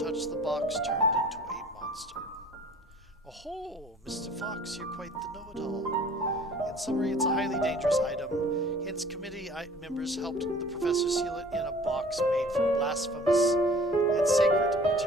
touched the box turned into a monster. Oh, Mr. Fox, you're quite the know-it-all. In summary, it's a highly dangerous item. Hence, committee members helped the professor seal it in a box made from blasphemous and sacred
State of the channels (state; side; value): normal; both; correlation 0.49